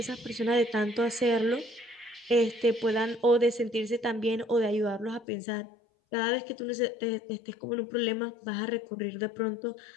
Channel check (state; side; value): drops out; right; at 5.2 s